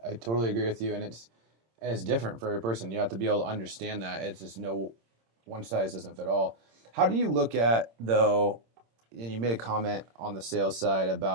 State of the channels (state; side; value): late; left; 26 ms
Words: totally agree with you, and it's different for every person. You have to be able to understand that. It's just no one size doesn't fit all. How do you look at, though, and you made a comment on the sales side